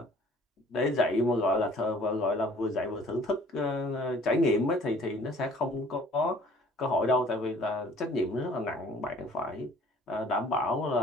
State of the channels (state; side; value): normal; both; correlation 0.53